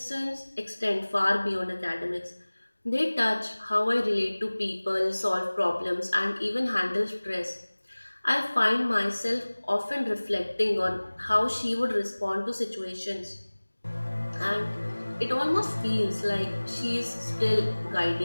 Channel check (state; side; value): inverted; both; correlation -1.00